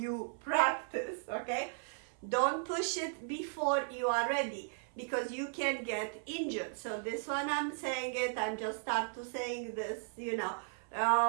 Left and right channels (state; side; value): silent; left; 54 dB below the other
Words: practice, okay? Don't push it before you are ready, because you can get injured. So this one I'm saying it, I'm just start to saying this, you know.